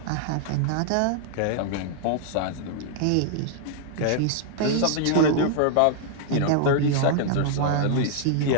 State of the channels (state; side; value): different; both; correlation -0.01